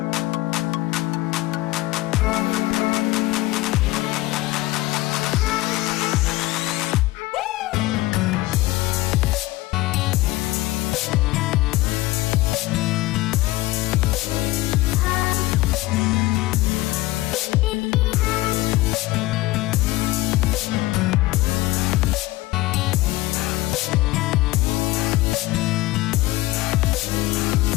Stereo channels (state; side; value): quieter; right; 18.5 dB